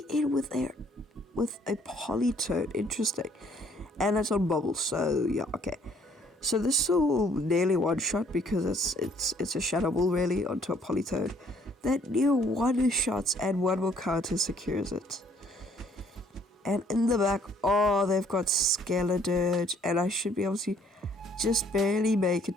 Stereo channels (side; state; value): both; normal; correlation 0.62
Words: in with a Polytoad. Interesting. And it's on bubble, so yeah, okay. So this will nearly one shot because it's a Shadow Ball really onto a Polytoad. That near one shots and one more counter secures it. And in the back, oh, they've got Skeledirge, and I should be able to just barely make it